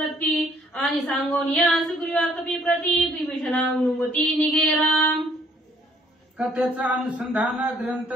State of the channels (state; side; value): normal; both; correlation 0.62